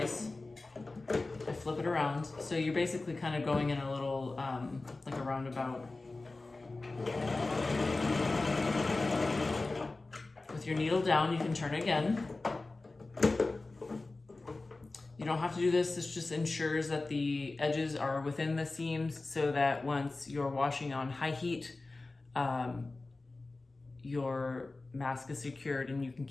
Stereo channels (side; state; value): right; quieter; 3.3 dB